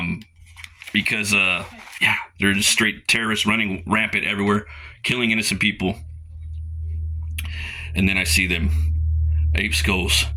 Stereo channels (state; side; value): identical; both; correlation 1.00